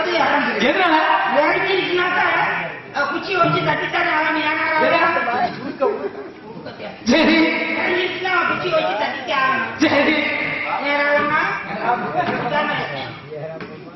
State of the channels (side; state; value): both; identical; correlation 1.00